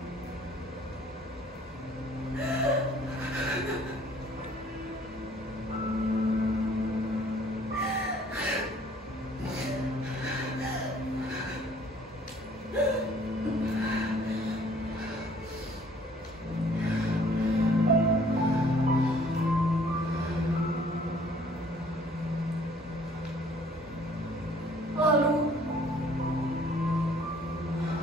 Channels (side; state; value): both; normal; correlation 0.57